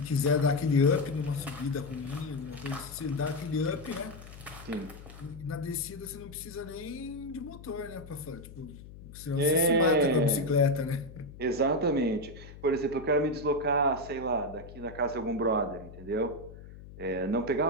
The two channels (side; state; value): left; noise; hum, 16 dB below the sound